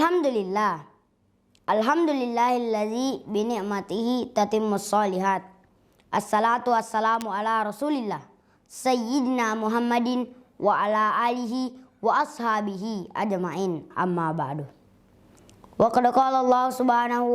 Alhamdulillahilladzi bini'matihi tatimmus shalihat. Assalatu wassalamu ala Rasulillah Sayyidina Muhammadin wa ala alihi wa ashabihi ajma'in, amma ba'du. Wa qad qala Allah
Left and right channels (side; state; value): both; identical; correlation 1.00